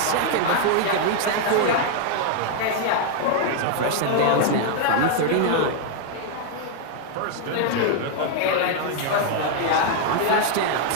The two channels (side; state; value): both; different; correlation 0.00